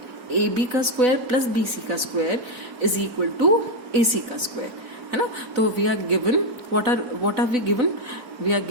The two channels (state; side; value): late; left; 4.0 ms